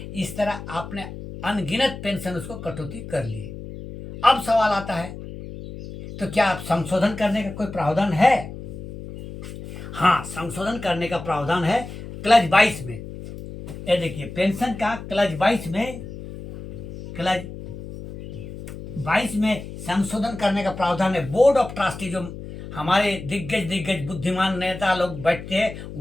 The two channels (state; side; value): noise; left; hum, 11 dB below the sound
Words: इस तरह आपने अनगिनत पेंशन उसको कटौती कर लिए। अब सवाल आता है, तो क्या आप संशोधन करने का कोई प्रावधान है? हाँ, संशोधन करने का प्रावधान है क्लज 22 में। ये देखिए पेंशन का क्लज 22 में संशोधन करने का प्रावधान है। बोर्ड ऑफ ट्रस्टी, जो हमारे दिग्गज बुद्धिमान नेता लोग बैठते हैं,